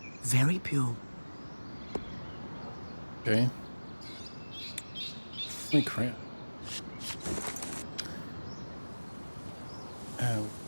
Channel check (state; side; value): inverted; both; correlation -1.00